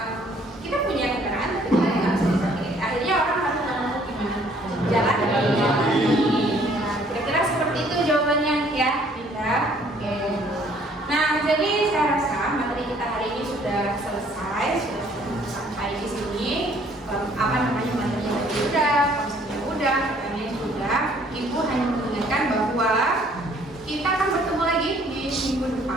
Kita punya kendaraan, tapi kita nggak bisa dipakai. Akhirnya orang harus menemukan gimana jalan. Nah, kira-kira seperti itu jawabannya ya, Dinda. Oke. Nah, jadi saya rasa materi kita hari ini sudah selesai, sudah sampai di sini. Materinya udah, konsepnya udah, pertanyaannya sudah. Ibu hanya mengingatkan bahwa kita akan bertemu lagi di minggu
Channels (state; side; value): normal; both; correlation 0.61